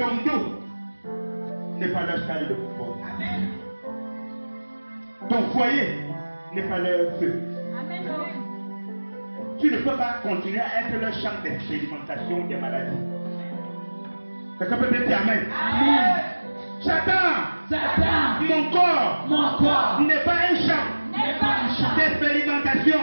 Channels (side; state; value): both; inverted; correlation -1.00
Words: dos n'est pas leur salle de football. Ton foyer n'est pas leur feu. Tu ne peux pas continuer à être leur champ d'expérimentation des maladies. Quelqu'un peut dire Amen? Amen. Satan, mon corps n'est pas un champ d'expérimentation.